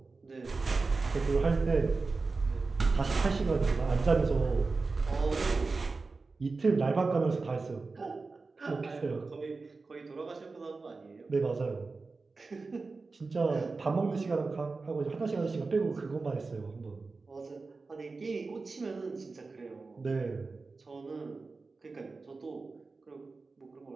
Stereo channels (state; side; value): quieter; left; 4.0 dB